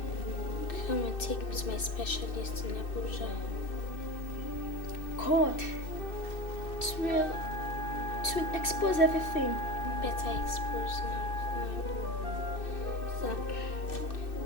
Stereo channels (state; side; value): late; right; 2.6 ms